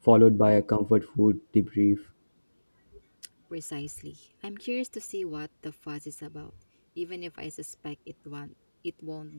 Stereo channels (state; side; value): inverted; both; correlation -1.00